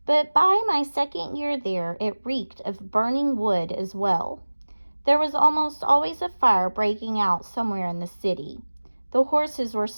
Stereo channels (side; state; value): both; inverted; correlation -1.00